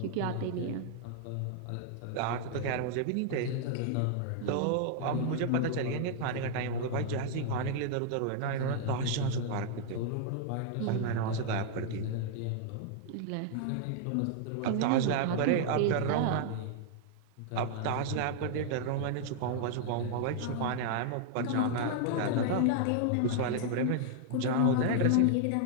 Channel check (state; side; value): different; both; correlation 0.00